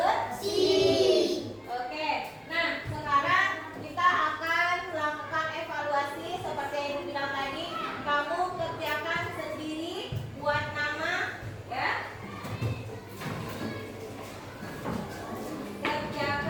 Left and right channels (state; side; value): identical; both; correlation 1.00